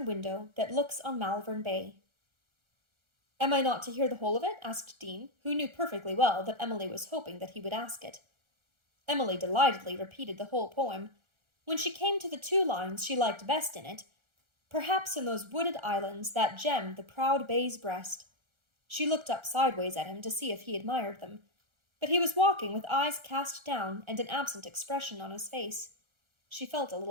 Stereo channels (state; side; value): late; left; 1.4 ms